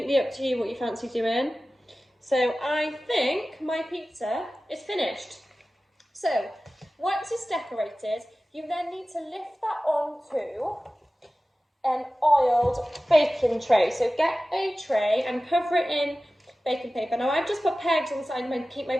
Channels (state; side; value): normal; both; correlation 0.96